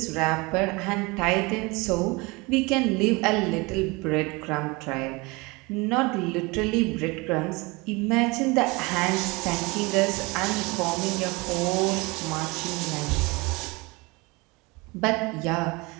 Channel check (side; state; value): left; quieter; 25.5 dB